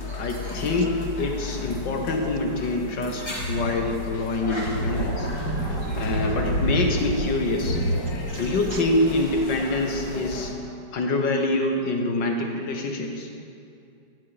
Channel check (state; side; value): late; right; 5.5 ms